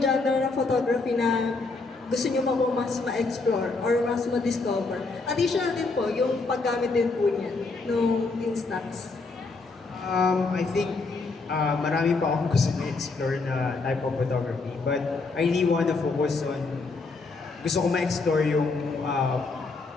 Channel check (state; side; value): quieter; right; 3.9 dB